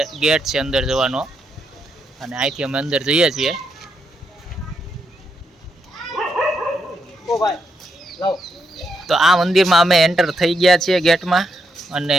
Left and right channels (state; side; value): normal; both; correlation 0.80